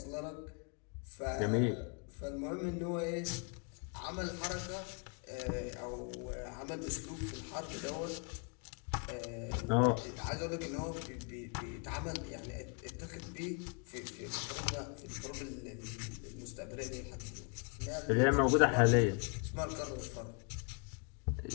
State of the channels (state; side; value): quieter; right; 36.9 dB